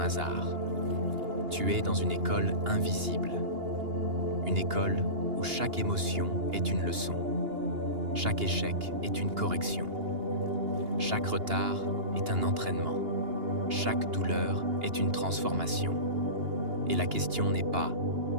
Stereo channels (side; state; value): left; late; 2.8 ms